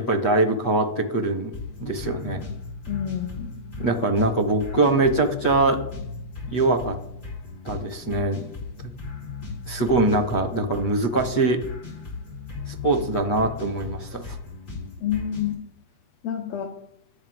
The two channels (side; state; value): right; late; 8.3 ms